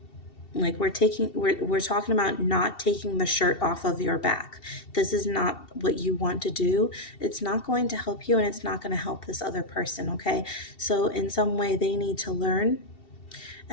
like we're talking about not taking the shirt off of your back. This is not what you want to do. It's not going to help you, and it's not going to help this other person. Okay, so in some way they need to learn,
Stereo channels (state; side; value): late; right; 2.7 ms